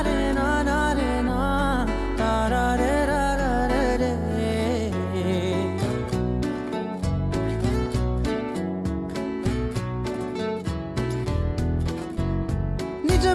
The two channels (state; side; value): identical; both; correlation 1.00